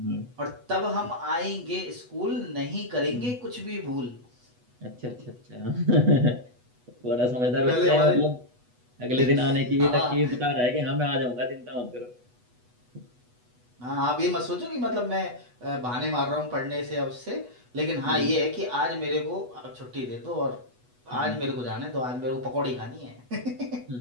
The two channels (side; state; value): left; late; 8.1 ms